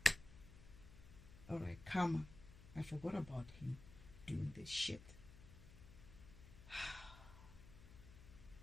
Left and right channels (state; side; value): noise; left; hum, 16 dB below the sound